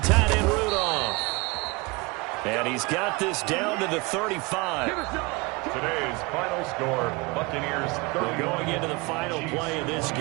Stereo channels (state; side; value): quieter; left; 26.1 dB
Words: end Rudolph. And he's got this down to the 35. Today's final score, Buccaneers 30. Going into the final play of this